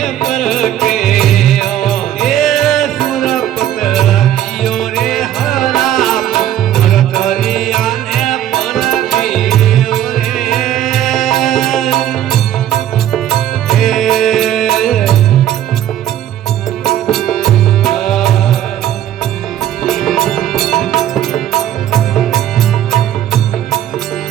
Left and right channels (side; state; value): left; quieter; 11.5 dB